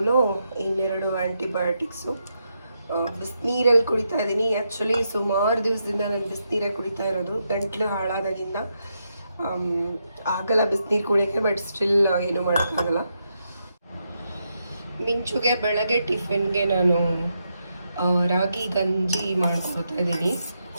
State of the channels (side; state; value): both; inverted; correlation -0.83